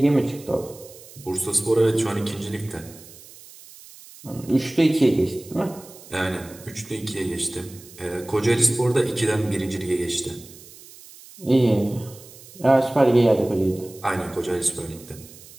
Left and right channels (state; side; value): noise; right; hiss, 20 dB below the sound